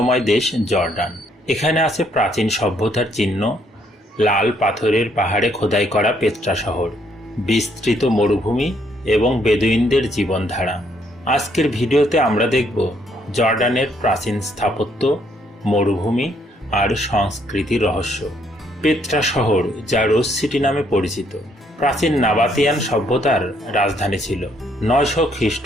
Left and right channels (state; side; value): normal; both; correlation 0.70